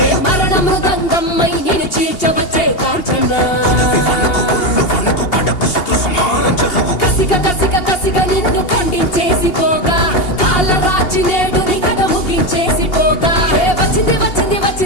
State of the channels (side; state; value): right; late; 2.8 ms